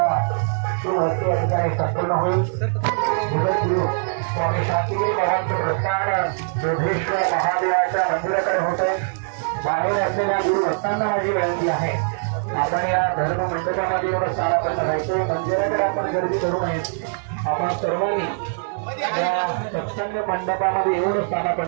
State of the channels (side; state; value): left; silent; digital silence